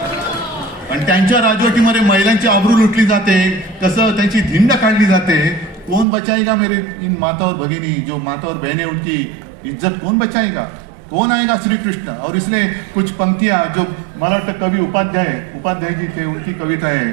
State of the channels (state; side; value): drops out; left; at 6.1 s